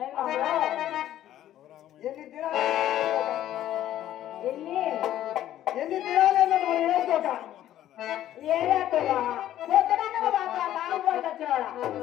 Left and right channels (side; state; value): right; quieter; 12.5 dB